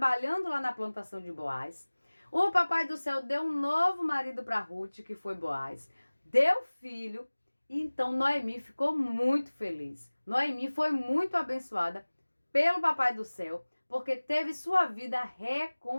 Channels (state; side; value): inverted; both; correlation -1.00